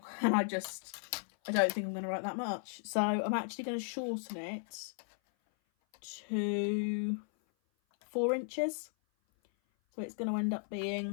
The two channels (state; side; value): silent; right; 54 dB below the other